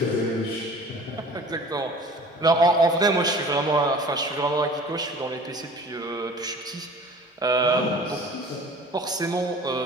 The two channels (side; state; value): both; normal; correlation 0.45